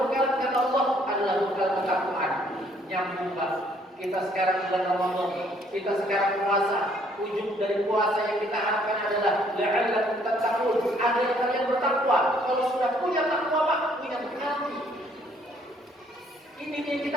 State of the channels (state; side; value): normal; both; correlation 0.64